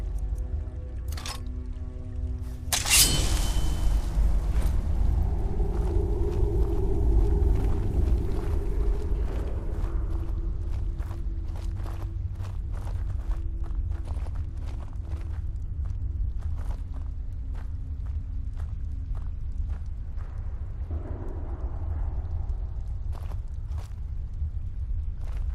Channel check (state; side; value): identical; both; correlation 1.00